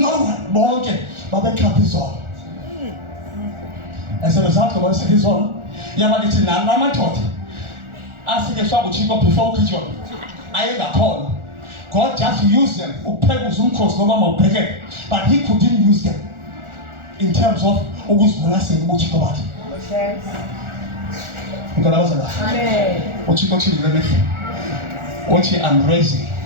one, but the cup is on. As a result of us, it is on. Yamadichi Nana taught. As the shop would go before kitchen, I had a call. God just used them, but he couldn't use them in terms of always blessing what you got. Because I was alive. What you I'm raising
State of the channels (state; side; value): late; left; 1.4 ms